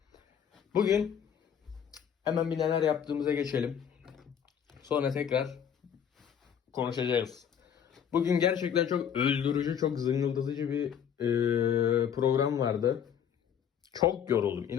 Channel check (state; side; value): quieter; right; 8.4 dB